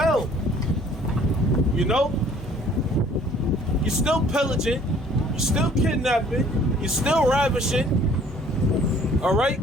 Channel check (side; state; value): both; normal; correlation 0.56